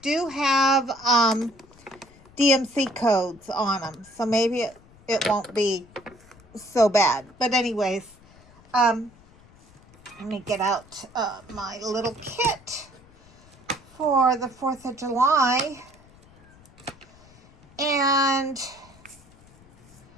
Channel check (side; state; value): left; noise; rumble, 26 dB below the sound